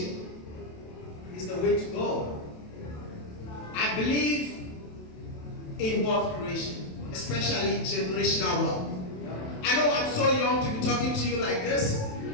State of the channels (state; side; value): late; right; 27 ms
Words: is the way to go. I believe in wealth creation, especially generational wealth. I know I'm so young to be talking to you like this,